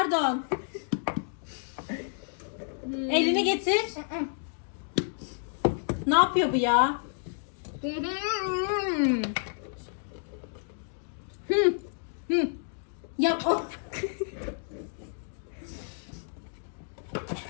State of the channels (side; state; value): right; silent; digital silence